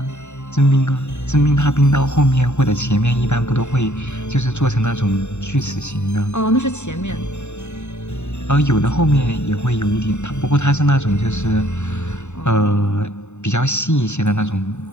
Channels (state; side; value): late; right; 0.82 ms